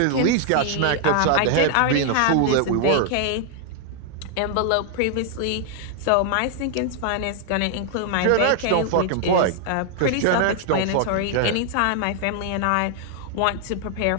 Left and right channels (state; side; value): different; both; correlation 0.00